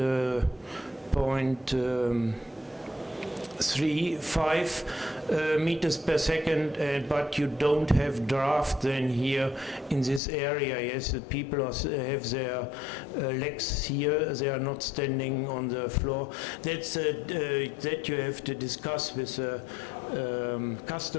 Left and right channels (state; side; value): drops out; right; at 10.2 s